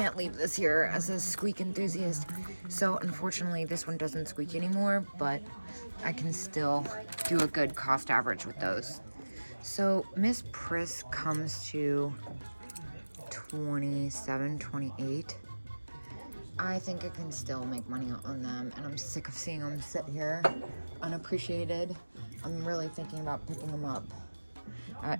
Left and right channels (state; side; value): inverted; both; correlation -1.00